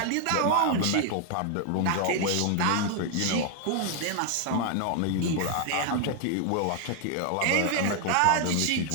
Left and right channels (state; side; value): different; both; correlation 0.00